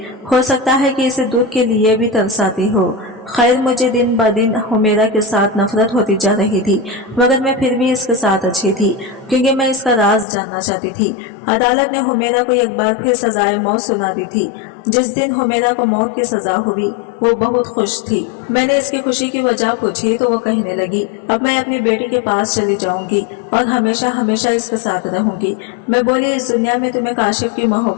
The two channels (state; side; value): drops out; right; at 10.2 s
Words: ہو سکتا ہے کہ اسے دودھ کے لیے بھی ترس آتی ہو۔ خیر، مجھے دن بہ دن حمیرہ کے ساتھ نفرت ہوتی جا رہی تھی، مگر میں پھر بھی اس کے ساتھ اچھی تھی کیونکہ میں اس کا راز جاننا چاہتی تھی۔ عدالت نے حمیرہ کو ایک بار پھر سزائے موت سنا دی تھی۔ جس دن حمیرہ کو موت کی سزا ہوئی وہ بہت خوش تھی۔ میں نے اس کی خوشی کی وجہ پوچھی تو وہ کہنے لگی، اب میں اپنی بیٹی کے پاس چلی جاؤں گی اور ہمیشہ ہمیشہ اس کے ساتھ رہوں گی۔ میں بولی، اس دنیا میں تمہیں کاشف کی